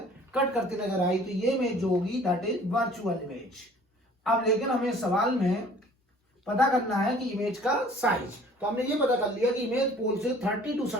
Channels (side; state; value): both; normal; correlation 0.52